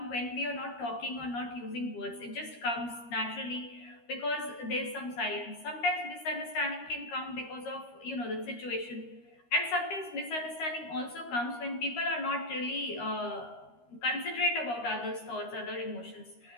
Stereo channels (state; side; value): late; right; 13 ms